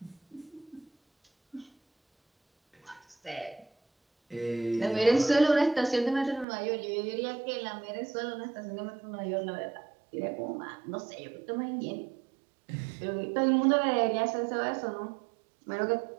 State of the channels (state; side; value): drops out; left; at 6.5 s